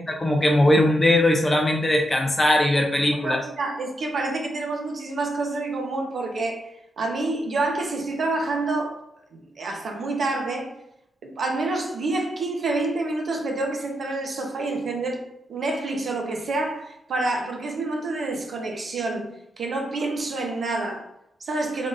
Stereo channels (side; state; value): both; normal; correlation 0.82